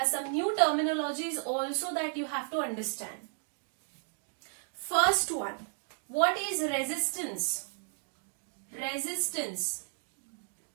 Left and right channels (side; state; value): left; silent; 55 dB below the other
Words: some new terminologies also that you have to understand. First one, what is resistance? Resistance